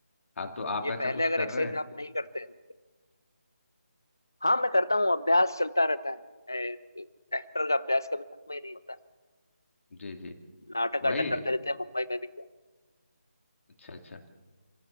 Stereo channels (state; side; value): inverted; both; correlation -0.93